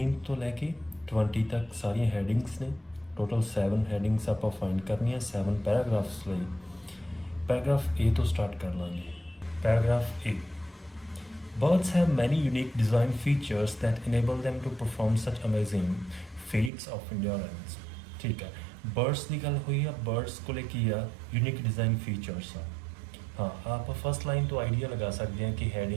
ਤੋਂ ਲੈ ਕੇ 20 ਤੱਕ ਸਾਰੀਆਂ ਹੈਡਿੰਗਸ ਨੇ। ਟੋਟਲ 7 ਹੈਡਿੰਗਸ ਆਪਾਂ ਫਾਈਂਡ ਕਰਨੀਆਂ 7 ਪੈਰਾਗ੍ਰਾਫਸ ਲਈ। ਪੈਰਾਗ੍ਰਾਫ ਏ ਤੋਂ ਸਟਾਰਟ ਕਰ ਲਾਂਗੇ। Paragraph A, birds have many unique design features that enable them to perform such amazing feats of endurance। ठीक है, बर्ड्स की गल हुई है। बर्ड्स को की आ यूनिक डिज़ाइन फीचर्स आ। हाँ, आप फर्स्ट लाइन तो आइडिया लगा सकते हैं कि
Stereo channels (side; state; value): left; drops out; at 16.7 s